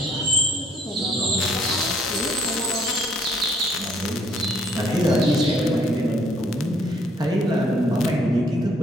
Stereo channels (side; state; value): both; normal; correlation 0.64